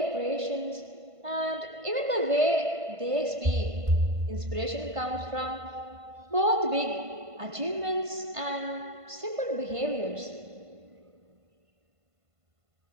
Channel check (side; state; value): left; late; 1.5 ms